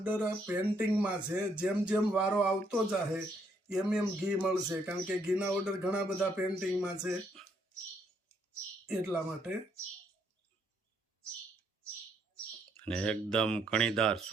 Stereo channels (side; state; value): both; normal; correlation 0.72